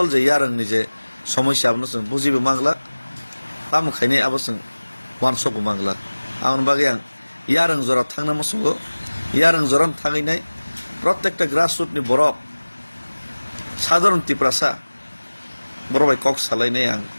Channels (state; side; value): inverted; both; correlation -1.00